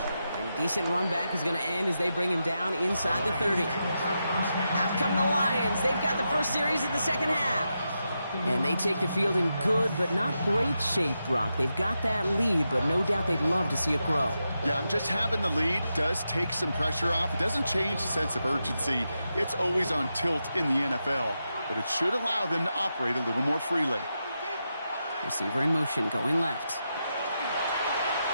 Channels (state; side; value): inverted; both; correlation -0.87